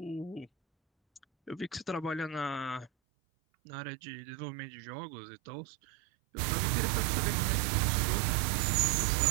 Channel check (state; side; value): drops out; left; at 2.9 s